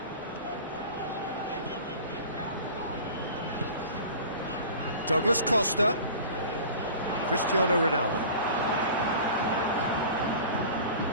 Douglas Costa. Cristiano Ronaldo.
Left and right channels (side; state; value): both; inverted; correlation -0.40